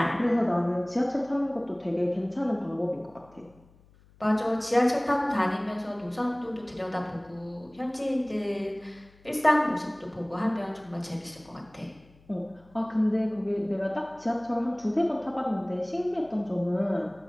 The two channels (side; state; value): left; noise; hum, 28 dB below the sound